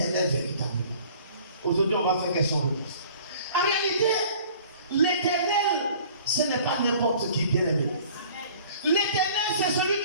véritablement? Aujourd'hui, on va faire question-réponse. En réalité, l'Éternel, ce n'est pas n'importe qui, bien aimé. L'Éternel, c'est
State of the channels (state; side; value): inverted; both; correlation -0.50